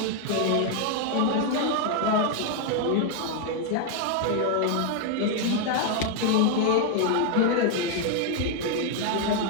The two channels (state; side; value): different; both; correlation 0.00